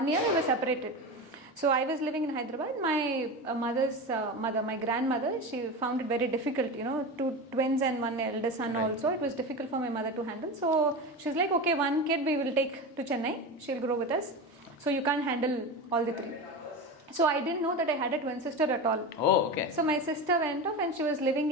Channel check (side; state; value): both; normal; correlation 0.24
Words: year we were separated. So I was living in Hyderabad. My mother's mother, my grandmother, she found it very difficult, 2 twins and 1 elder son also. It was difficult for my mother to handle. So she's like, okay, 1 kid we will take to Chennai. She'll grow with us. So you can't handle all the 3. So I didn't know that I had a twin sister at all. Oh, okay. So my sister went off and she was living